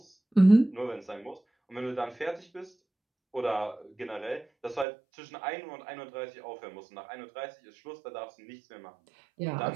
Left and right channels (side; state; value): left; drops out; at 4.9 s